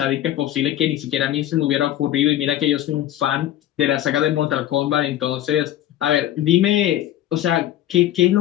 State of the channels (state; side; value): quieter; right; 12.7 dB